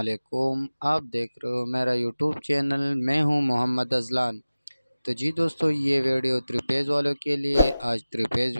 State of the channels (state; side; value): inverted; both; correlation -0.97